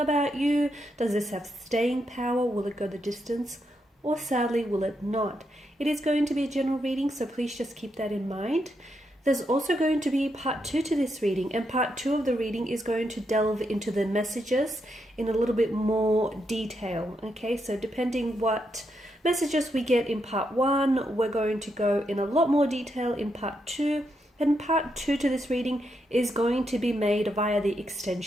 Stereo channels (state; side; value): normal; both; correlation 0.81